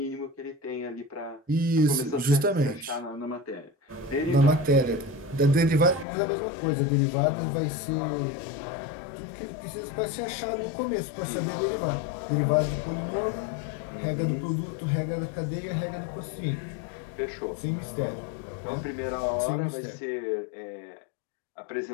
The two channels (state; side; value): drops out; right; at 6.1 s